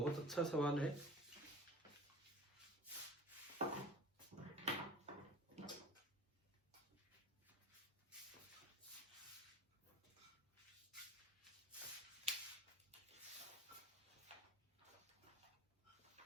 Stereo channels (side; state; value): both; normal; correlation 0.41